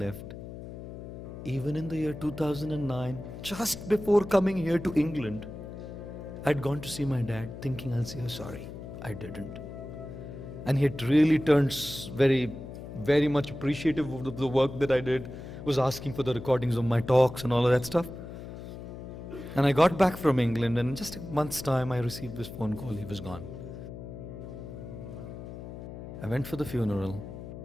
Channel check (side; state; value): left; noise; hum, 11 dB below the sound